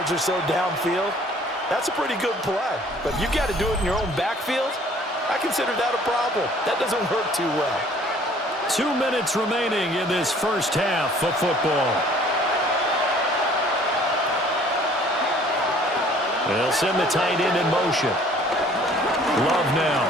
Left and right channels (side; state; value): both; normal; correlation 0.55